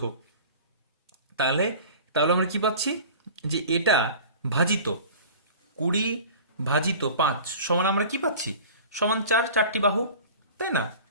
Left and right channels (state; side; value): inverted; both; correlation -0.40